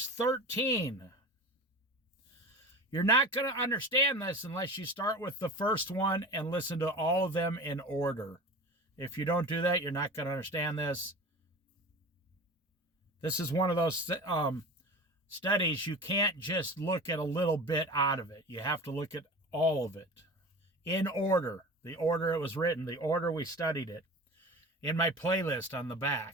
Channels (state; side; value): normal; both; correlation 0.34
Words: 13. You're not going to understand this unless you start with the first one and listen to all of them in order. If you don't do that, you're not going to understand this. This is one of those studies you can't just look at a little bit out of it. You have to look at all of it in order. The order it was written, the order we studied it, in my playlist on the